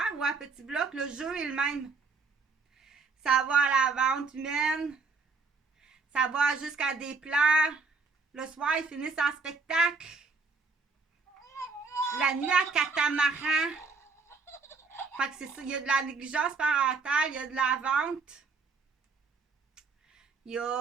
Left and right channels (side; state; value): left; quieter; 4.3 dB